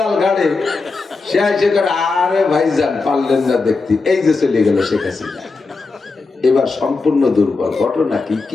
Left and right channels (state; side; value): quieter; right; 4.0 dB